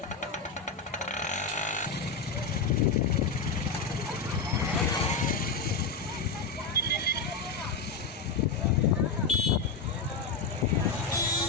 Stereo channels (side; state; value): right; quieter; 4.7 dB